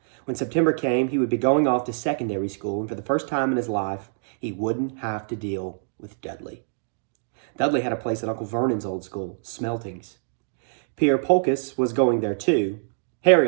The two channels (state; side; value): silent; left; digital silence